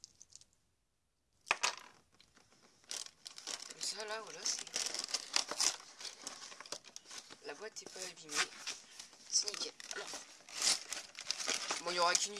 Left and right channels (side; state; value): both; identical; correlation 1.00